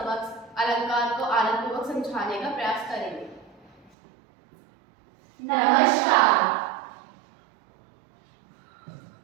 अलंकार को आनंदपूर्वक समझाने का प्रयास करेंगे। नमस्कार।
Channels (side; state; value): left; drops out; at 3.9 s